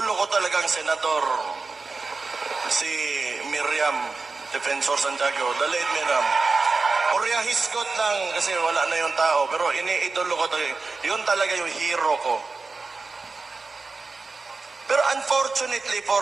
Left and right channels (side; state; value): left; quieter; 4.1 dB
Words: ko talagang senador, si Miriam Defensor Santiago, the late Miriam. Orya hisgot lang kasi wala na yung tao, pero iniidolo ko talaga. Yun talaga yung hero ko. Pero unfortunately